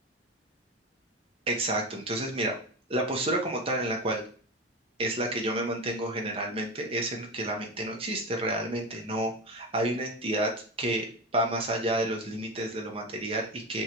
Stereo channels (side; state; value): both; normal; correlation 0.21